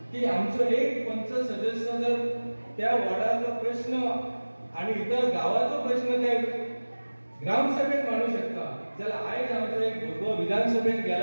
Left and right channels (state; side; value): inverted; both; correlation -1.00